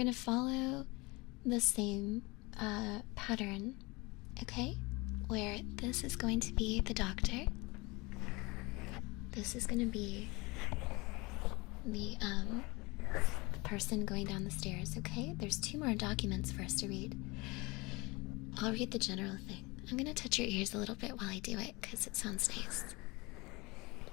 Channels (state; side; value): quieter; right; 24.6 dB